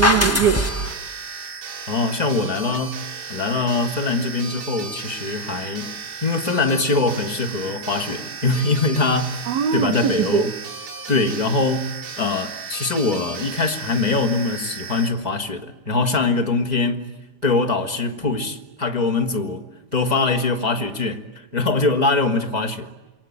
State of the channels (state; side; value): late; left; 5.0 ms